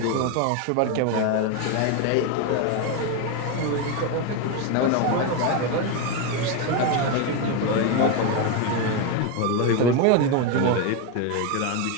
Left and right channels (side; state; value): both; different; correlation 0.02